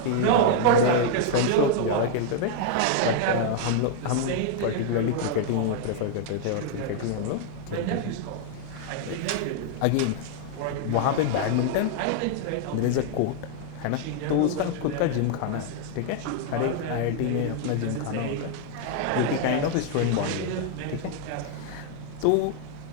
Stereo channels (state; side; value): different; both; correlation 0.00